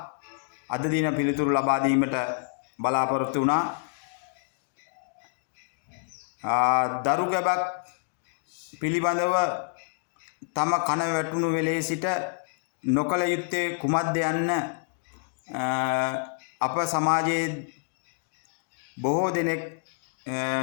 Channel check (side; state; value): right; silent; digital silence